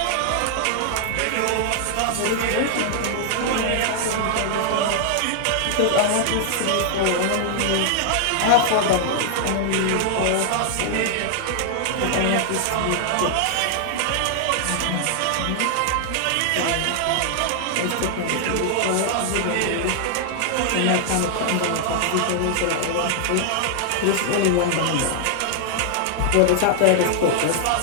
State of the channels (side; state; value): both; different; correlation 0.00